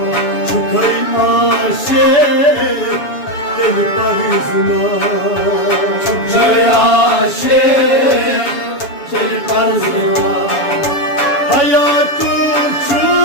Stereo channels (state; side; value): late; right; 7.1 ms